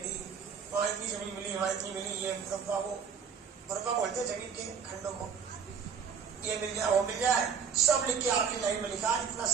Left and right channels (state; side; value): quieter; left; 6.6 dB